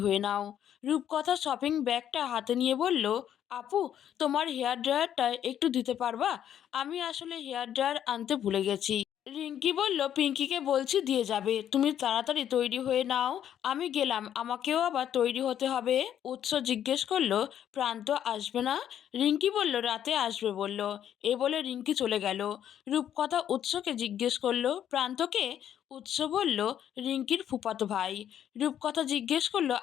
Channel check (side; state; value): right; quieter; 10.1 dB